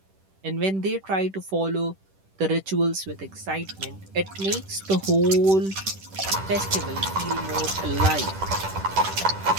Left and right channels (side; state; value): left; late; 10 ms